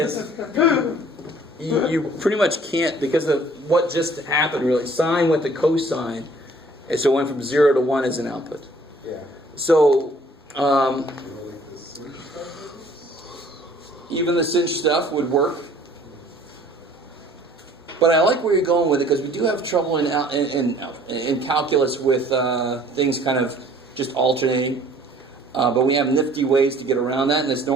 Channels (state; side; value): normal; both; correlation 0.55